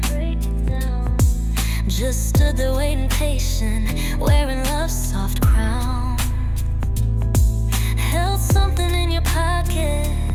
Just stood there waiting patient, wearing love's soft crown. Held something in your pocket,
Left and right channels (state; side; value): identical; both; correlation 1.00